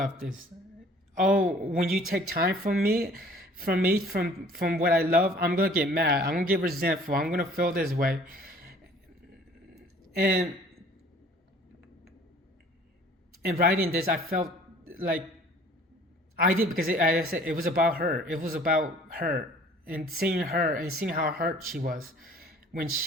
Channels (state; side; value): normal; both; correlation 0.52